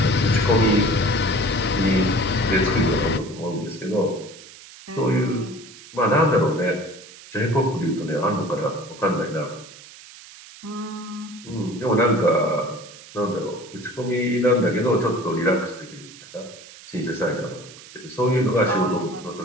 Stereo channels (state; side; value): noise; right; hiss, 19 dB below the sound